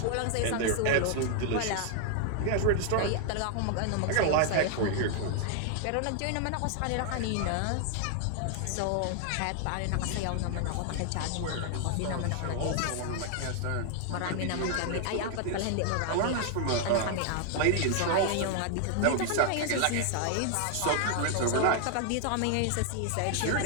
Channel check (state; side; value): different; both; correlation 0.00